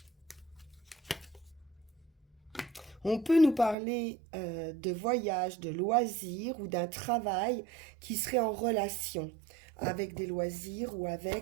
On peut nous parler de voyage, de loisirs ou d'un travail qui serait en relation avec des loisirs ou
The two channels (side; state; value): left; drops out; at 3.8 s